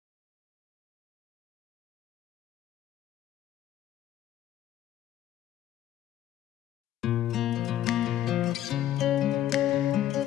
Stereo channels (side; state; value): right; quieter; 12.3 dB